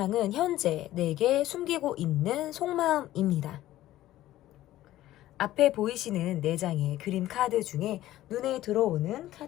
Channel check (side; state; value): right; quieter; 14.7 dB